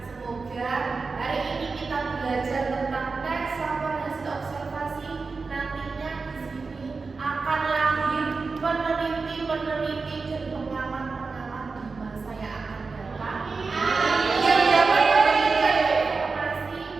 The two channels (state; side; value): quieter; left; 4.3 dB